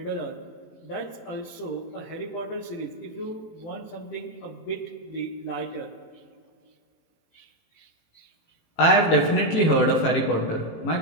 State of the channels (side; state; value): right; late; 18 ms